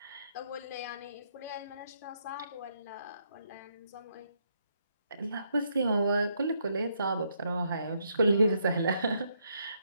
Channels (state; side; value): inverted; both; correlation -0.75